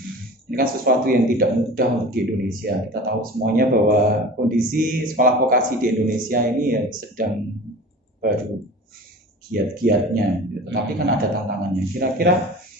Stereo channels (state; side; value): normal; both; correlation 0.37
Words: Ini kan sesuatu yang tidak mudah untuk di Indonesia. Kita tahu semuanya bahwa kondisi sekolah vokasi di Indonesia ini ya sedang baru giat-giatnya gitu. Tapi kan ada tantangannya. Kira-kira